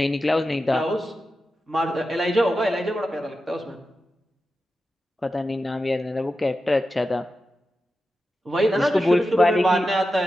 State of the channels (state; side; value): normal; both; correlation 0.91